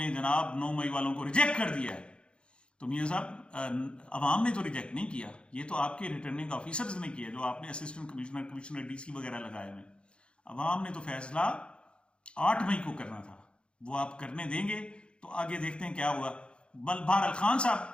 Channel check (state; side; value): late; right; 0.056 ms